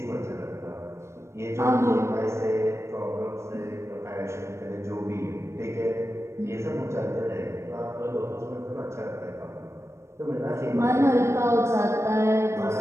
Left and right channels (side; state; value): left; late; 0.13 ms